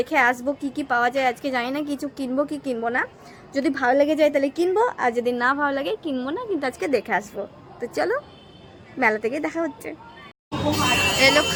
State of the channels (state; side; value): identical; both; correlation 1.00